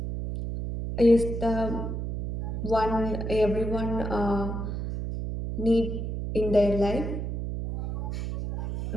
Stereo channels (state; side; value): noise; right; hum, 4 dB below the sound